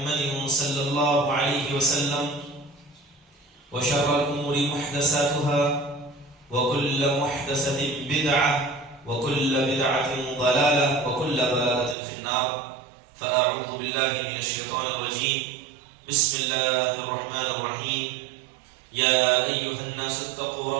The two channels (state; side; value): drops out; left; at 12.0 s